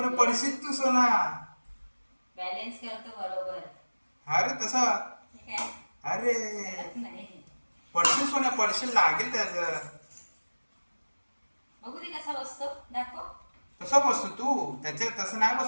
पडशील तू सोना. बॅलन्स करतो बरोबर. अरे तसा. अरे पडशील सोन्या, पडशील, लागेल त्याचं. बघू दे कसा बसतो, दाखव. कसा बसतो तू? त्याच्या तसं नाही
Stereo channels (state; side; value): inverted; both; correlation -1.00